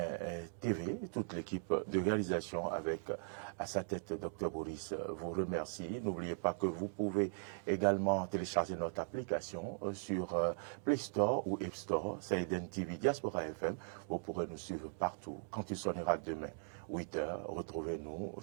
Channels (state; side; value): silent; left; digital silence